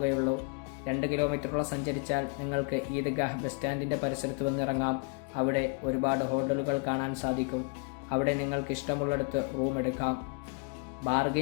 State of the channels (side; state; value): right; quieter; 33.9 dB